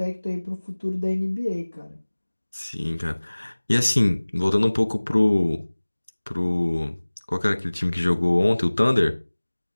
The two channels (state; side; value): inverted; both; correlation -1.00